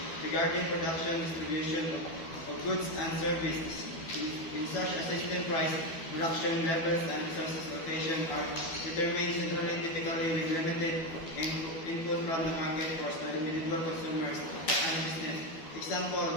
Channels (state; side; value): late; right; 12 ms